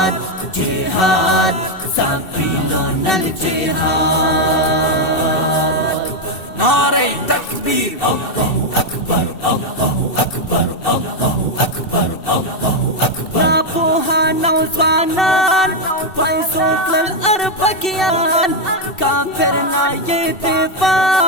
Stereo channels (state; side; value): late; right; 2.7 ms